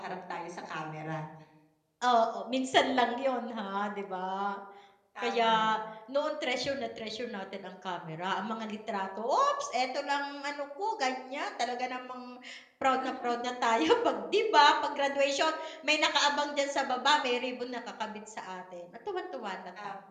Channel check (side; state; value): both; identical; correlation 1.00